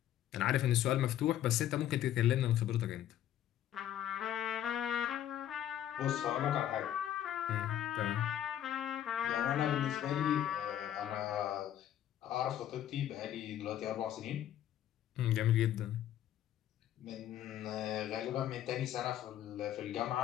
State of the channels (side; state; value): right; quieter; 11.5 dB